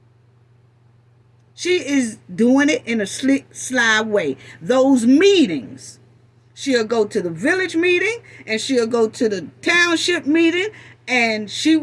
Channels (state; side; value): identical; both; correlation 1.00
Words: She is doing it in a slick, sly way. Those meetings, She'll go to the village meeting, and she'll go to the township meeting, and she